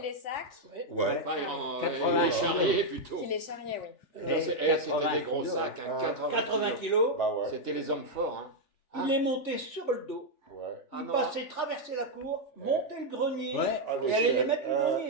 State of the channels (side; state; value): right; late; 3.3 ms